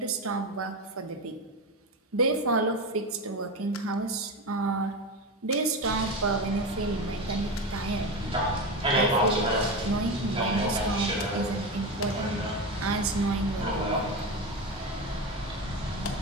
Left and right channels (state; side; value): normal; both; correlation 0.20